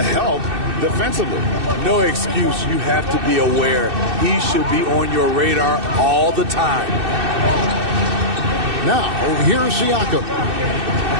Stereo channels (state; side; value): late; left; 2.6 ms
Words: help defensively? No excuse. You have to be aware. He should be on your radar all the time. Now, here's Siakam.